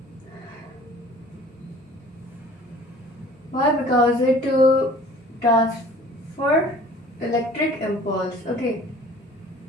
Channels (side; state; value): both; normal; correlation 0.49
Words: Why? Because it transfer electric impulse, okay,